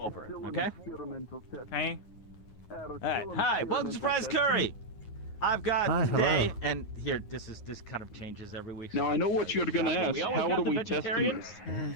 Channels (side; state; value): right; late; 9.5 ms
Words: it. Okay. Hey. All right. Hi. Welcome to Surprise Curry. I've got Hi, today, hello. and here, this kind of changes every week. Now I know what you're gonna ask. We always How got do the we test vegetarians. them?